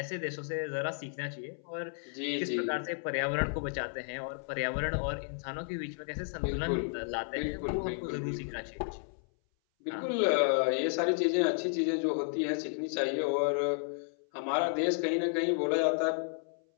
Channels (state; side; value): silent; right; 56 dB below the other